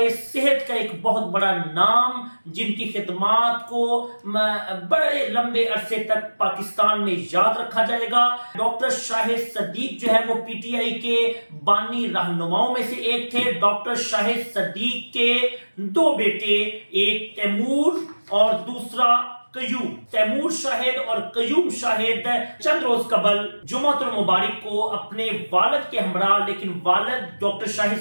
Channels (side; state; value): both; inverted; correlation -1.00